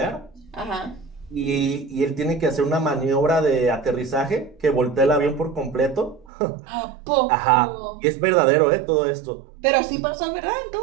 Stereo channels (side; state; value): left; drops out; at 6.2 s